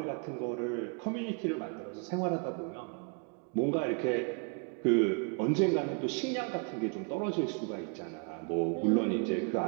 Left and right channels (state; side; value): quieter; left; 36.2 dB